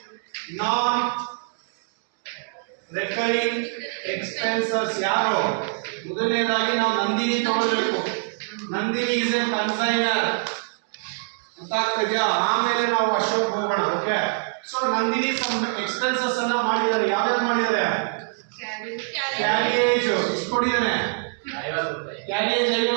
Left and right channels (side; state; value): left; silent; digital silence